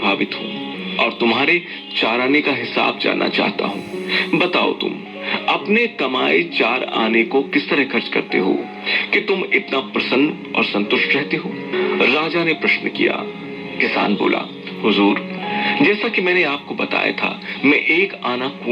हूँ और तुम्हारे चाराने का हिसाब जानना चाहता हूँ। बताओ, तुम अपने कमाए 4 आने को किस तरह खर्च करते हो कि तुम इतना प्रसन्न और संतुष्ट रहते हो? राजा ने प्रश्न किया। किसान बोला, हुजूर, जैसा कि मैंने आपको बताया था, मैं 1 आना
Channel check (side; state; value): both; identical; correlation 1.00